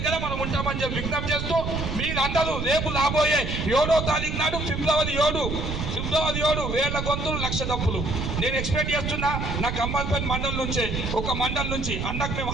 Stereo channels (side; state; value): right; noise; rumble, 3 dB below the sound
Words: మనం ఉంటామని చెప్పి విజ్ఞప్తి చేస్తూ, మీరందరూ రేపు రాబోయే 7వ తారీఖు నాడు ఫిబ్రవరి 7 వేల గొంతులు 1,00,000 తప్పులు నేను ఎక్స్పెక్ట్ చేస్తున్నా. నా ఖమ్మంపల్లి మండలం నుంచే, ఒక మండలం నుంచి అన్నకు మేము